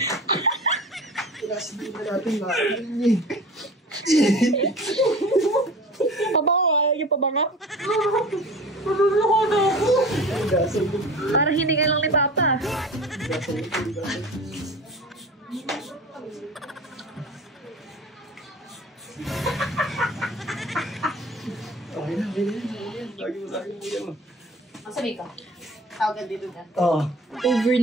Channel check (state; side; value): normal; both; correlation 0.38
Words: Kinasabihin na natin natin eh. Pabango, ayaw yung pabango. Maluloko na ako. Gasol mo. Parang hindi ka lang ni Papa. Gasol mo. Okay na. Lagi mo. Masabi ka. Tawag dito na. Oo. Over